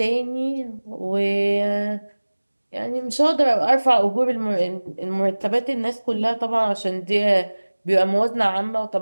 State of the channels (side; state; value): both; inverted; correlation -1.00